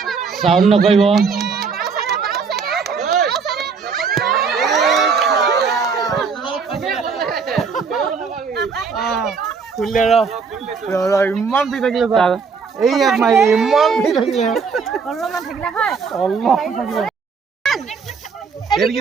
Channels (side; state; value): left; quieter; 5.4 dB